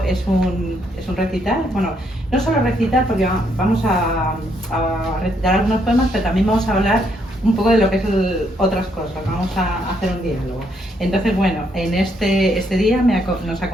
es un recital. Bueno, no solo recital, porque vamos a recitar algunos poemas, pero también vamos a hablar un poco de lo que es otras cosas. Vamos a hacer un diálogo. Entonces, bueno, en este día nos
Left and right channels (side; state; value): both; normal; correlation 0.73